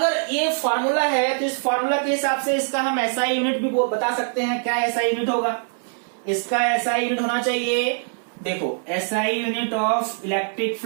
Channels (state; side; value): silent; left; 63 dB below the other